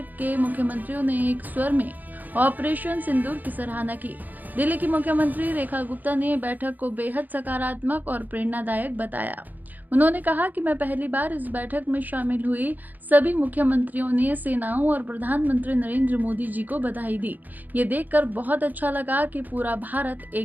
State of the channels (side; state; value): left; late; 0.084 ms